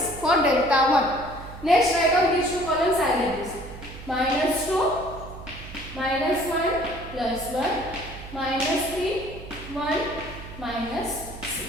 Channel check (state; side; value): noise; right; hum, 14 dB below the sound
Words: for delta 1. Next write down these two columns as it is. Minus 2, minus 1 plus 1, minus 3, 1, minus